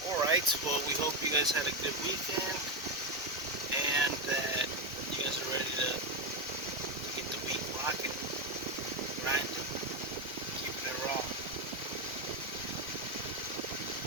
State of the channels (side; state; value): both; normal; correlation 0.08